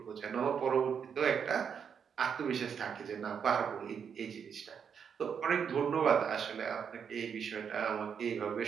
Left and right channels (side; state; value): left; quieter; 7.2 dB